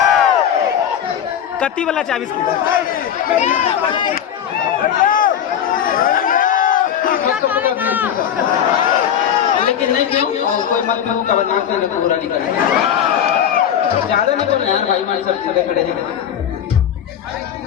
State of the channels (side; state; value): right; quieter; 9.3 dB